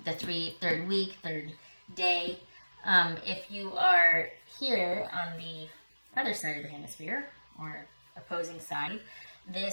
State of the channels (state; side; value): inverted; both; correlation -1.00